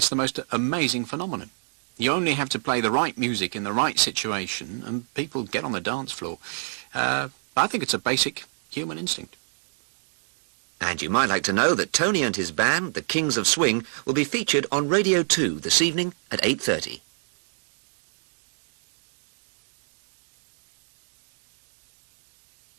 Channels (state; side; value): silent; left; digital silence